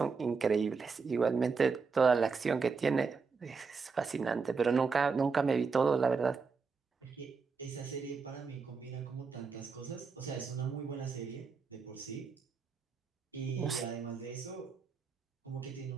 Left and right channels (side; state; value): left; quieter; 5.0 dB